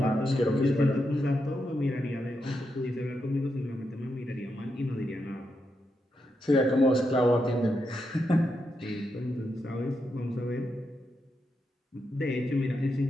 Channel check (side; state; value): both; normal; correlation 0.84